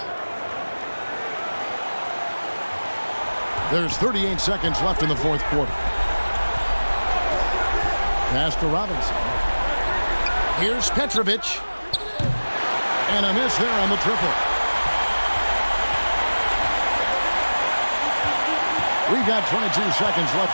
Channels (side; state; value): both; inverted; correlation -1.00